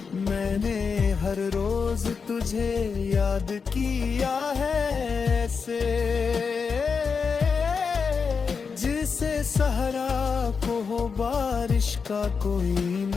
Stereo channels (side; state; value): right; quieter; 5.5 dB